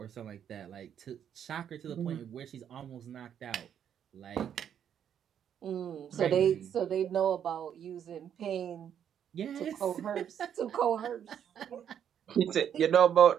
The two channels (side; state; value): left; quieter; 9.0 dB